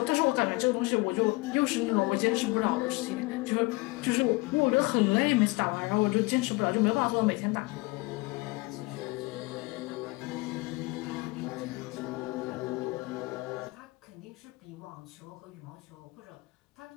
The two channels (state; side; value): quieter; right; 24.1 dB